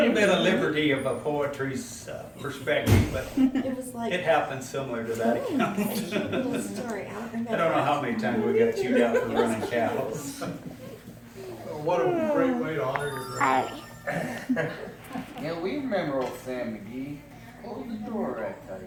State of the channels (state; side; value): identical; both; correlation 1.00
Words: bit of liberty of a poetry's perspective, but It was like it happens similar to that account. a cute little story. I don't remember. I don't know how many times we got chewed out for running cows. What a great way to honor your grandpa. Yeah, we remember old Sam McGee. Close the door, I tell